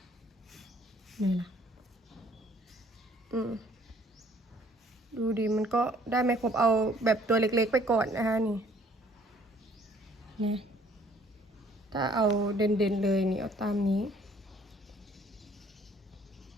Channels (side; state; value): both; normal; correlation 0.59